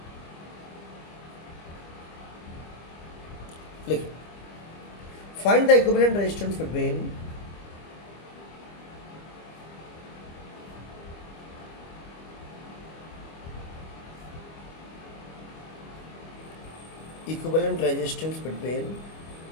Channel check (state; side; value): late; right; 25 ms